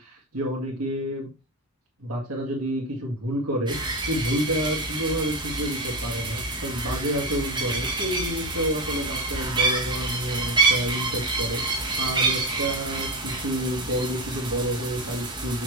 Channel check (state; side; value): normal; both; correlation 0.15